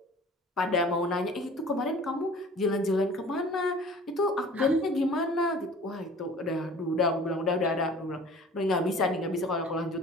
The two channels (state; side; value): normal; both; correlation 0.46